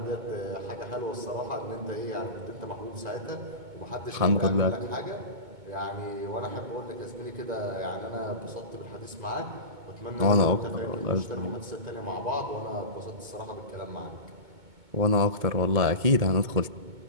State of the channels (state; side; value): late; left; 2.2 ms